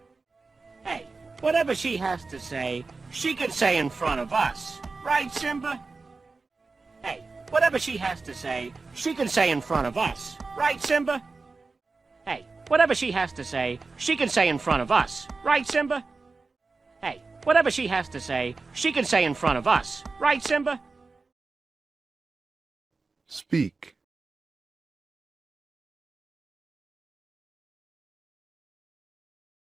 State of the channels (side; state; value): left; quieter; 4.0 dB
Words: Hey, whatever she has to say, she can say in front of us. Right, Simba? Hey, whatever she has to say, she can say in front of us. Right, Simba? Hey, whatever she has to say, she can say in front of us. Right, Simba? Hey, whatever she has to say, she can say in front of us. Right, Simba? Speak.